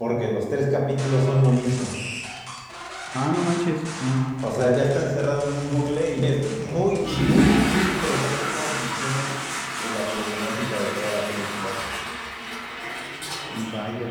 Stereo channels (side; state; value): both; identical; correlation 1.00